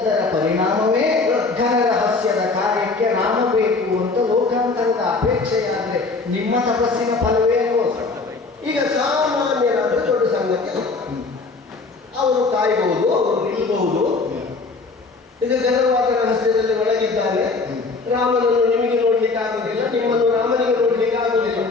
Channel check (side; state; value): right; quieter; 3.9 dB